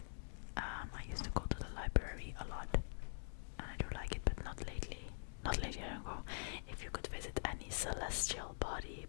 I used to go to the library a lot, and I do like it, but not lately. Not lately, I don't go. If you could visit any celestial body,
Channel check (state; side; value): silent; right; digital silence